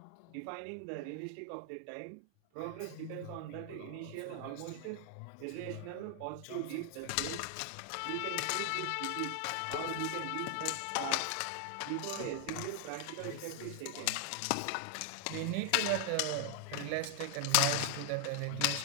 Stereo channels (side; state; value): both; different; correlation 0.00